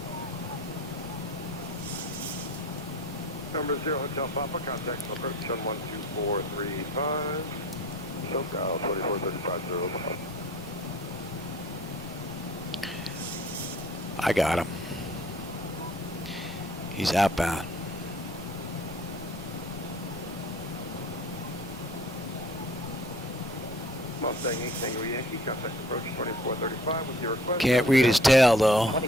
Number 0, Hotel Papa, contact approach on 12435. SoCal 2435. I got him. He's outbound. Mustang 8 Tango Yankee, contact approach 2435 with your request. Can't read his tail though.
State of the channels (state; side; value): normal; both; correlation 0.51